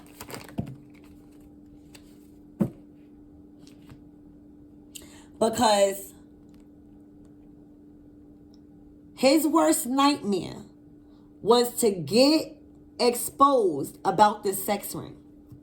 Because his worst nightmare was to get exposed about this sex ring.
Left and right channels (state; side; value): identical; both; correlation 1.00